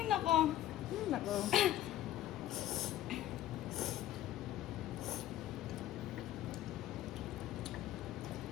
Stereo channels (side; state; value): right; quieter; 13.1 dB